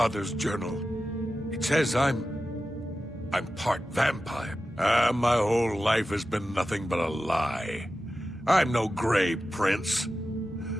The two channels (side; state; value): both; normal; correlation 0.93